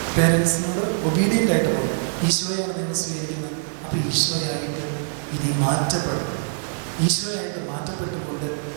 പേരൻസിനോട് ഒബീഡിയൻ്റ് ആയിട്ട് പോകും. ഈശോയാണ് നിങ്ങൾ സ്വീകരിക്കുന്നത്, അപ്പോൾ ഈശോയായിട്ട് ഇനി മാറ്റപ്പെടും. ഈശോയായിട്ട് മാറ്റപ്പെട്ടുകൊണ്ട്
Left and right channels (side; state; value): left; silent; 61 dB below the other